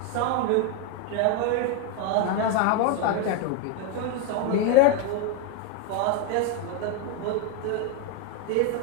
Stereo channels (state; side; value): different; both; correlation 0.02